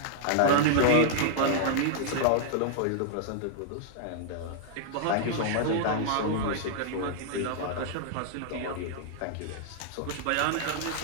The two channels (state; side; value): different; both; correlation -0.01